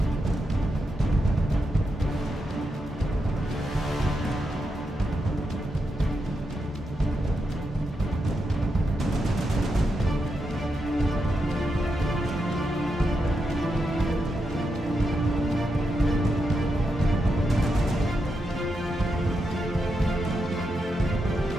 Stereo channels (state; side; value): normal; both; correlation 0.85